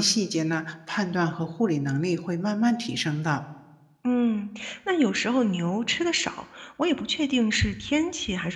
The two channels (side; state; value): both; identical; correlation 1.00